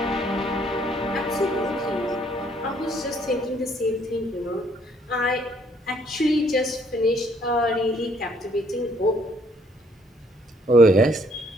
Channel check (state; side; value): normal; both; correlation 0.66